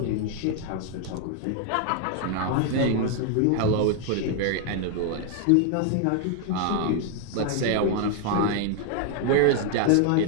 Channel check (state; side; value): different; both; correlation 0.00